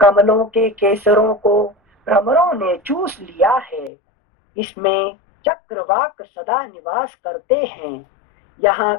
के केसरों को भ्रमरों ने चूस लिया है। इसमें चक्रवाक सदा निवास करते हैं। यहाँ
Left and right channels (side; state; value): right; drops out; at 3.9 s